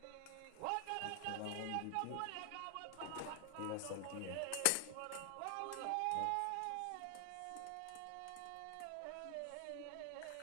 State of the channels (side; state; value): both; different; correlation 0.00